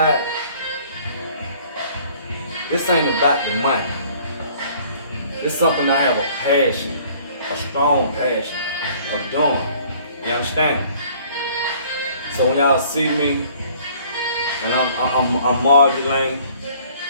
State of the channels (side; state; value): both; inverted; correlation -0.56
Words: This ain't about the money. It's something I have a passion, a strong passion of doing. You understand? So when y'all see me, and I'm modulating,